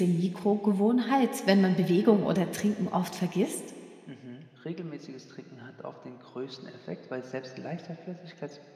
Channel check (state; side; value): identical; both; correlation 1.00